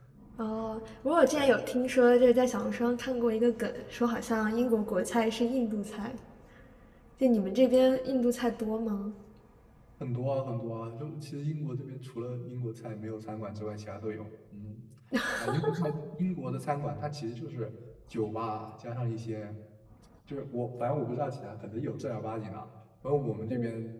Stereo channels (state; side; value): identical; both; correlation 1.00